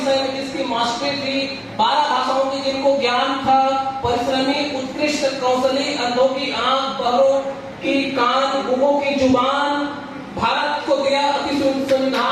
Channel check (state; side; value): identical; both; correlation 1.00